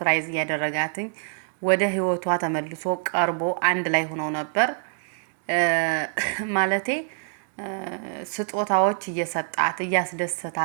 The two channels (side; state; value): left; silent; 61 dB below the other